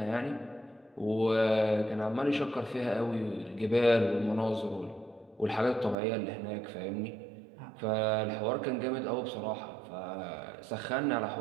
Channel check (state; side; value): drops out; left; at 6.0 s